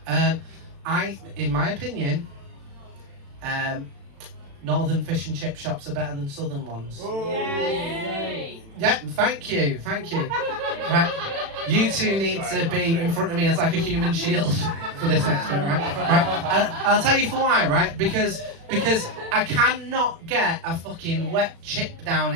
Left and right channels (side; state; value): left; late; 36 ms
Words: In my opinion, northern fish and chip shops are better than southern ones. Yay! Yeah, thank you. Right? You two need to be in front of me as like a human shield for this next bit, right? I'll tell you for why, right? Because I cannot get a fucking wet chip down